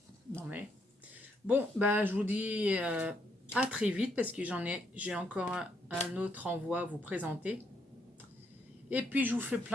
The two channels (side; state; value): both; normal; correlation 0.74